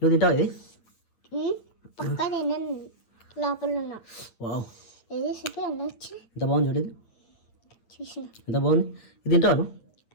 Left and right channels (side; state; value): right; late; 8.9 ms